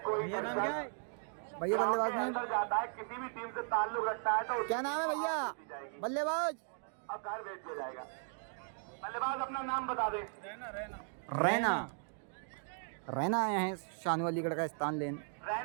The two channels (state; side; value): silent; left; 53 dB below the other